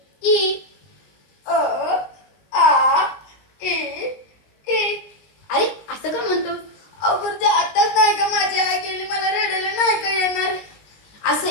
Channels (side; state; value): right; late; 19 ms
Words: ई. अ आ ई ई. अरे असं का म्हणतो? अगं ते आताच नाही का माझी आई गेली, मला रडायला नाही का येणार. असं